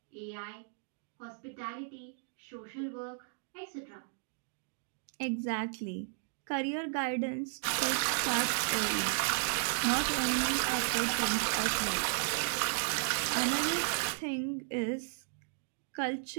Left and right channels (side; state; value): left; silent; digital silence